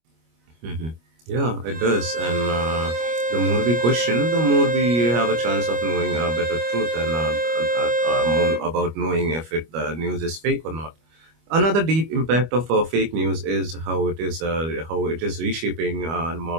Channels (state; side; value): late; left; 25 ms